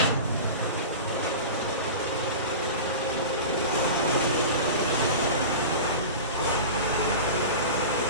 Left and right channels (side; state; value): both; inverted; correlation -0.31